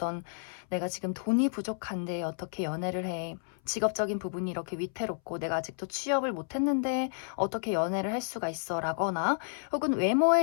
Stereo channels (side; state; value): right; silent; 57 dB below the other